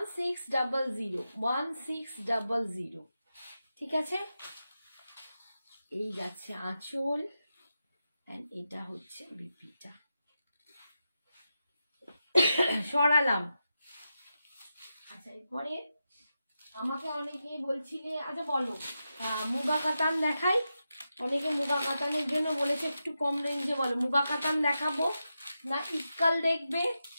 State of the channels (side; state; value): both; inverted; correlation -0.89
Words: ঠিক আছে। এই যাচ্ছে আঁচল, এন্ড এটা হচ্ছে বিপিটা। সরালাম। আচ্ছা এরপরে আমাকে অনেকে বলছিলে, আচ্ছা বলো মুগা কাতান দেখাই। অনেকে মুগা কাতানের জন্য বলেছে একটু কম রেঞ্জে, বলো মুগা কাতান দেখাবো না ইক্কাল দেখবে